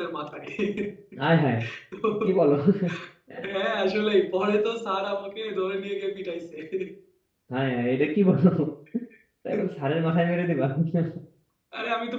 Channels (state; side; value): identical; both; correlation 1.00